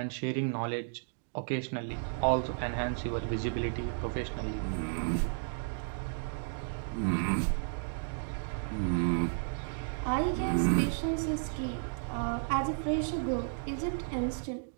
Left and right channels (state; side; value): silent; left; digital silence